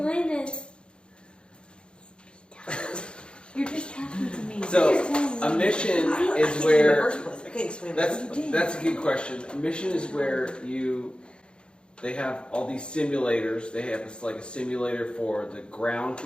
it. You're just talking to me. So, a mission is where... That's That's a good question. A mission is where they have all these simulators. They have like a simulator for the ground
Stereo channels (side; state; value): right; late; 0.054 ms